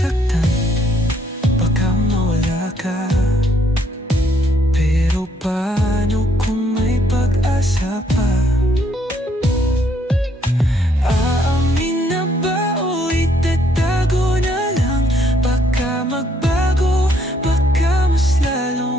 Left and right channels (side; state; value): both; normal; correlation 0.69